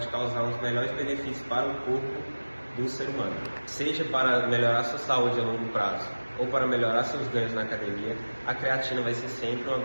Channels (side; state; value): both; inverted; correlation -1.00